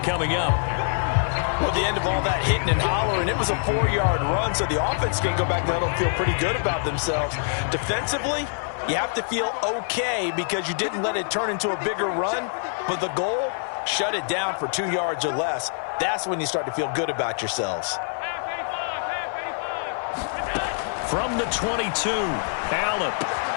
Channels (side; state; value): right; silent; 56 dB below the other